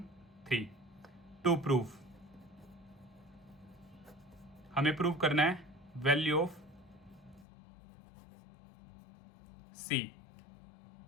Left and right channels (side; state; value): right; drops out; at 7.5 s